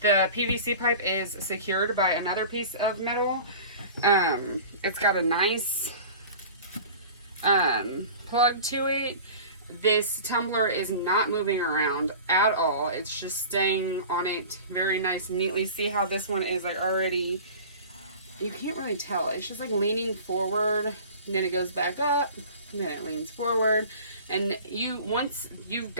The PVC pipe is secured by another piece of metal. It's got a nice plug to it. This tumbler is not moving around at all. It's just staying on it very nice and neatly. See how this one is like already, you can't really tell. It's just like leaning forward, and then it goes back up, and then it leans forward. And once you've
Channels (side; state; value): both; inverted; correlation -0.39